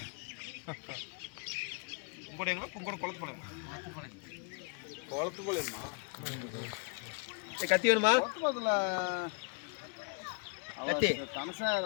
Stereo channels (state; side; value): quieter; right; 36.7 dB